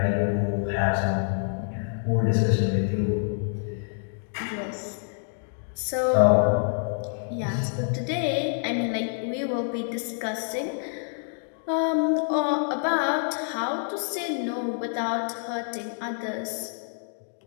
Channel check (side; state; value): right; silent; digital silence